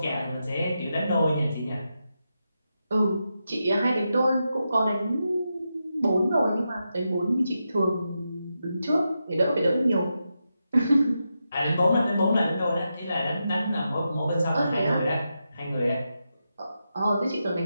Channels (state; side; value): inverted; both; correlation -0.87